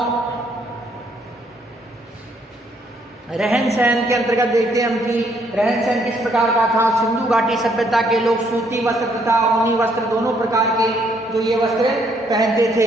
रहन सहन के अंतर्गत देखते हैं हम कि रहन सहन किस प्रकार का था। सिंधु घाटी सभ्यता के लोग सूती वस्त्र तथा ऊनी वस्त्र दोनों प्रकार के जो ये वस्त्र पहनते थे।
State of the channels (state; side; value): normal; both; correlation 0.69